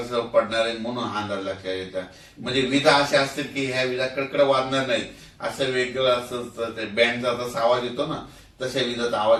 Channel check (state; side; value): identical; both; correlation 1.00